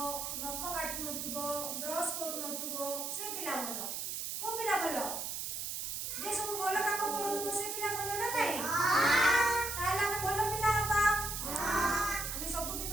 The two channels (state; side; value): noise; right; hiss, 4 dB below the sound